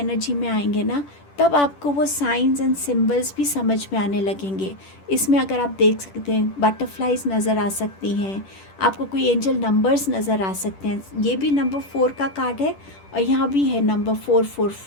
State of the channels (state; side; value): late; right; 10 ms